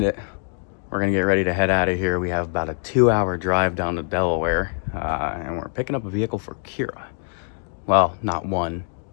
it. We're gonna get ready to head out of here. We have about a 2-hour drive down to Delaware, and we're picking up a vehicle for Kira. Well, not one,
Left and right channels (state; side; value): silent; right; digital silence